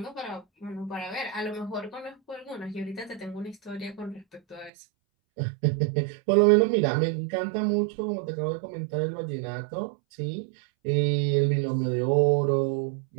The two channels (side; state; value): left; drops out; at 4.7 s